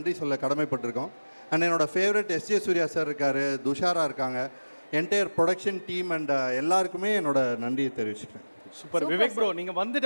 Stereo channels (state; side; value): inverted; both; correlation -1.00